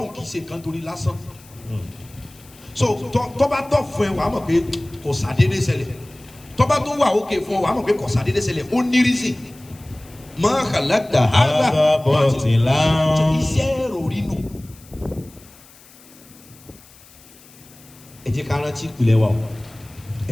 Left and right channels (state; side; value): noise; left; hiss, 24 dB below the sound